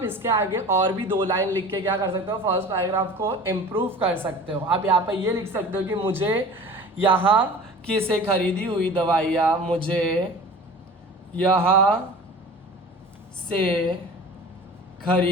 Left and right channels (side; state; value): both; normal; correlation 0.40